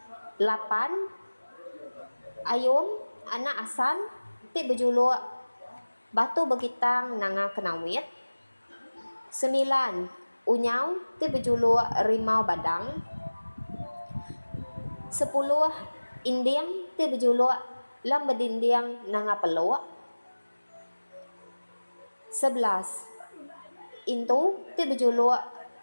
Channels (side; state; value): both; inverted; correlation -1.00